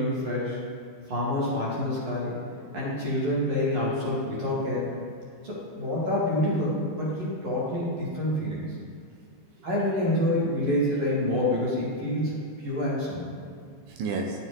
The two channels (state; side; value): late; left; 11 ms